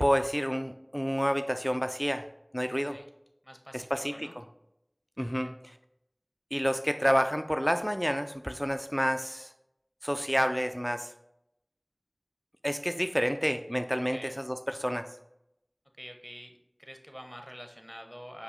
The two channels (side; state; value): both; identical; correlation 1.00